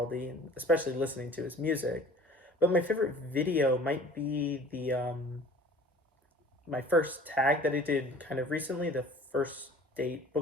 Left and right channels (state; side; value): normal; both; correlation 0.46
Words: and especially listening to his music. But my favorite video might be the my first tag that I did kind of recently, the first date